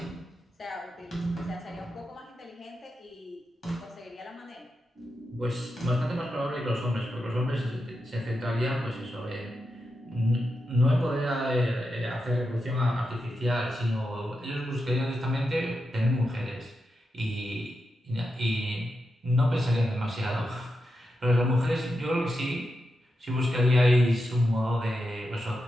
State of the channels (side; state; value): both; normal; correlation 0.88